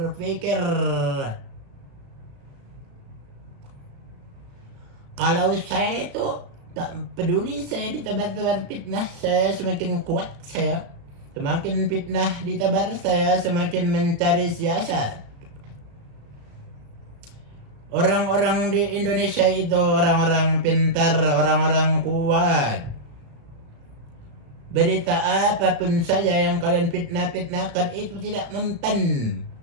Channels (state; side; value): late; left; 35 ms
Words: Kalau saya itu tak peduli, saya ditebar fitnah, saya semakin kuat saya. Semakin fitnah ditebar, saya semakin mencari siasat. Orang-orang di Indonesia itu orang-orang pintar, orang-orang kuat. Berita apapun saja yang kalian fitnahkan itu tidak mempan.